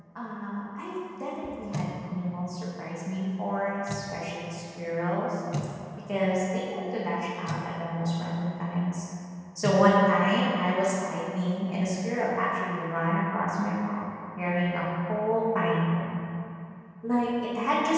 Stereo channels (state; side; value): identical; both; correlation 1.00